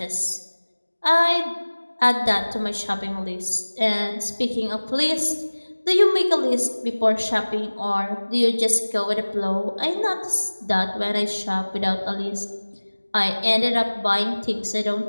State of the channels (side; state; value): both; inverted; correlation -1.00